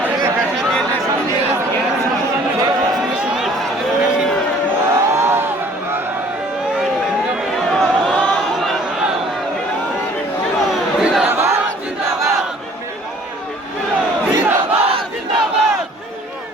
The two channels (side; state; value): both; normal; correlation 0.54